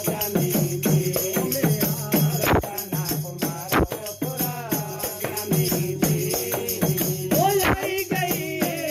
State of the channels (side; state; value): both; identical; correlation 1.00